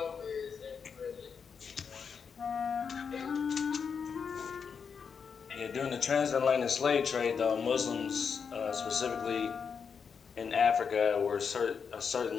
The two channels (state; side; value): quieter; right; 6.2 dB